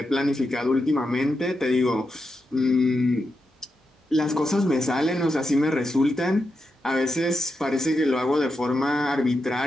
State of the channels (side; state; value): both; normal; correlation 0.86